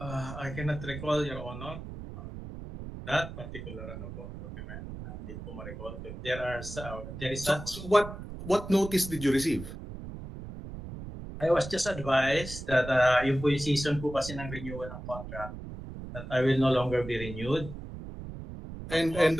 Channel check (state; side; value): noise; right; rumble, 10 dB below the sound